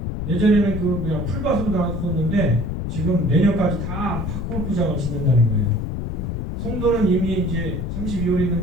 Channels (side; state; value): left; noise; rumble, 3 dB below the sound